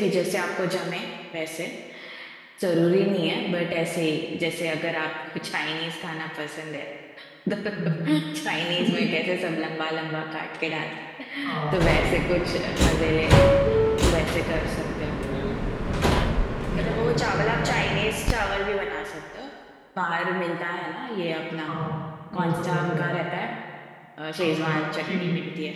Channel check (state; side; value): identical; both; correlation 1.00